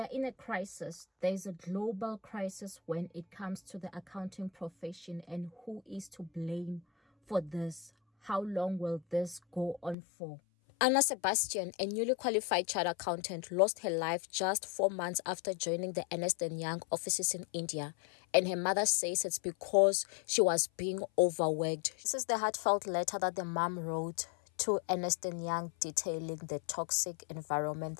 in a crisis. There's a global crisis when it comes to the accounting profession, and who is to blame for this? How long will this go on for? Anna Sebastian, a newly qualified chartered accountant, lost her life just 4 months after joining the Ernst & Young offices in India, and her mother says it's because she was being overworked. This is the heartfelt letter that the mom wrote to Ernst & Young detailing the toxic environment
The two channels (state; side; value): drops out; right; at 10.0 s